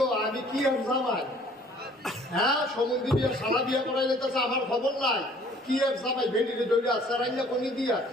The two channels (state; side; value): normal; both; correlation 0.55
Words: আমি কি আর জামাই, হ্যাঁ সমুদ্রী বিয়া সারা বিয়া করাই যেতেছে আমার খবর নাই। কি আর জামাই ভেন্ডিতে দৌড়ে আসছে রাইয়া গনি দিয়া